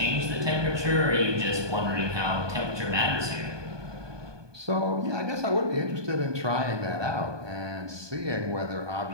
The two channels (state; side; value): late; left; 1.2 ms